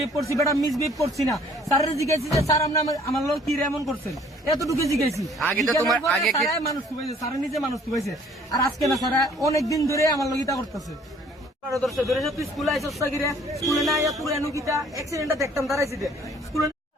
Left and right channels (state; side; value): normal; both; correlation 0.57